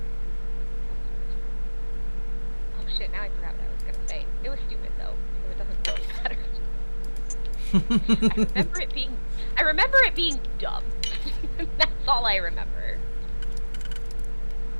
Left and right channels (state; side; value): inverted; both; correlation -1.00